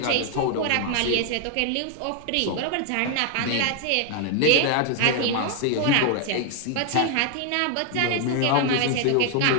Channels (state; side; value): different; both; correlation 0.00